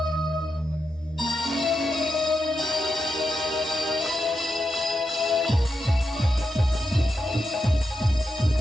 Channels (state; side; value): normal; both; correlation 0.86